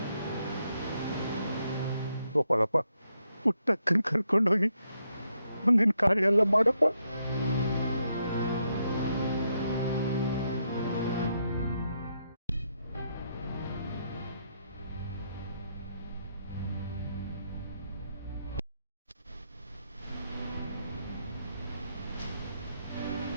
ಗೋಪಾಲಪ್ಪ, ಪುಟ್ಟಕ್ಕನ ಕರ್ಕೊಂಡೋಗಿ ಮುಂದಿನ ಕಾರ್ಯ ಎಲ್ಲ ಮಾಡಪ್ಪ.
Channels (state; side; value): inverted; both; correlation -0.79